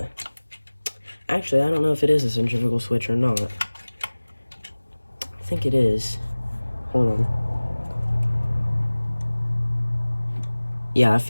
actually, I don't know if it is a centrifugal switch or not. I think it is. Hold on. Yeah, I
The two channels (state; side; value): inverted; both; correlation -1.00